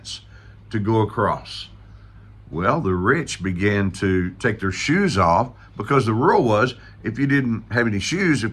to go across. Well, the rich began to take their shoes off because the rule was if you didn't have any shoes,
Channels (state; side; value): identical; both; correlation 1.00